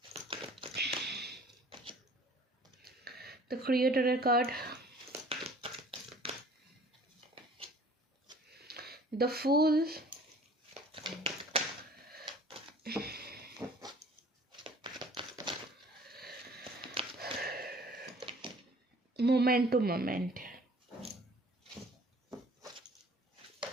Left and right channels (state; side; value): normal; both; correlation 0.51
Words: the creator card, the fool, moment to moment,